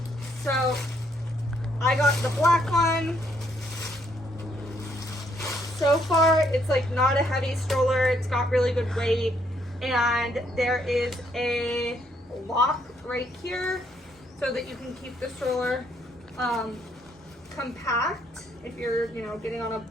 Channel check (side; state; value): both; normal; correlation 0.71